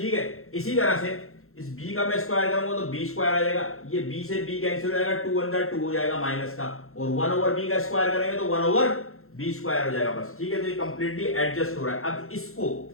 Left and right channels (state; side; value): late; right; 0.62 ms